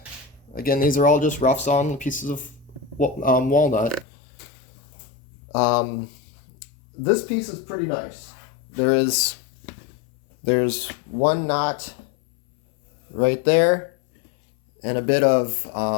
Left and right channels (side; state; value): right; drops out; at 4.0 s